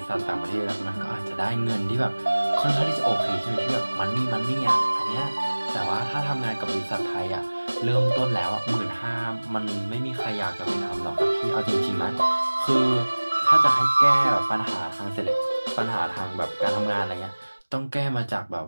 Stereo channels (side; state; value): both; inverted; correlation -1.00